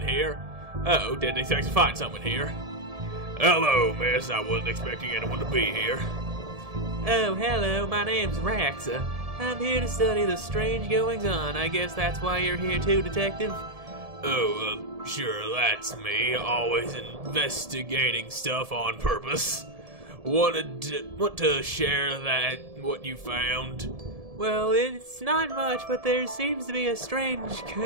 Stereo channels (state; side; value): late; left; 1.7 ms